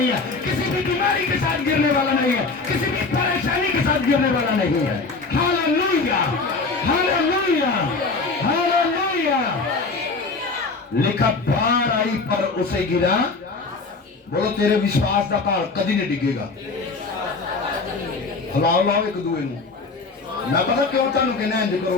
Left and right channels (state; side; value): quieter; right; 3.9 dB